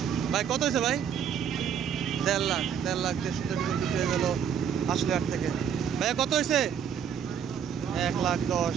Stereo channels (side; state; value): left; quieter; 8.1 dB